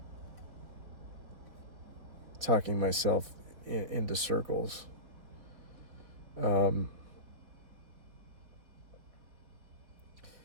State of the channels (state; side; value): late; left; 4.5 ms